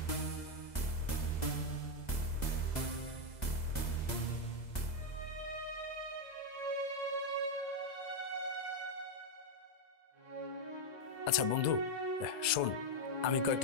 আচ্ছা বন্ধু শোন, আমি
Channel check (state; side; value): late; right; 2.0 ms